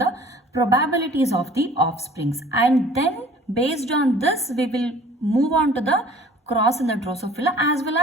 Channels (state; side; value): normal; both; correlation 0.51